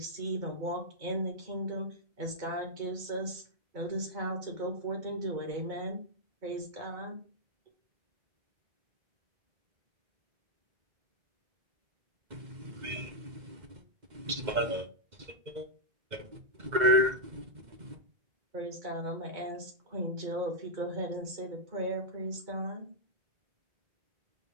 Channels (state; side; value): late; left; 2.1 ms